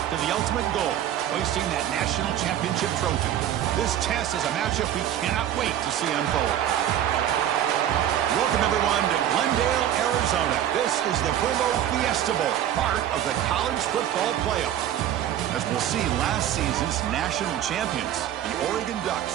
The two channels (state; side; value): quieter; left; 11.1 dB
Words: the ultimate goal, hoisting that national championship trophy. This test is a matchup we cannot wait to see unfold. Welcome, everyone, to Glendale, Arizona. This is the Fuego Fiesta Bowl, part of the college football playoff. As we'll see, last season's national champions, the Oregon